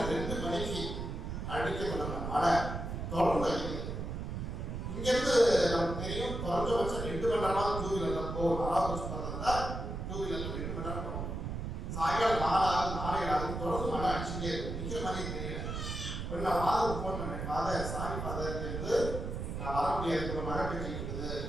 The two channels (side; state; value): right; noise; rumble, 4 dB below the sound